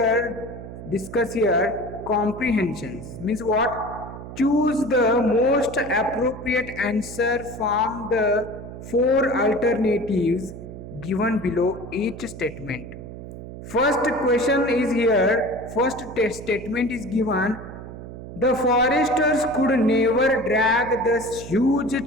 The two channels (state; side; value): noise; right; hum, 12 dB below the sound